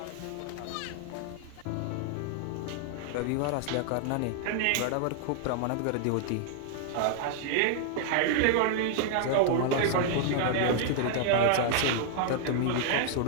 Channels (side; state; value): both; different; correlation -0.01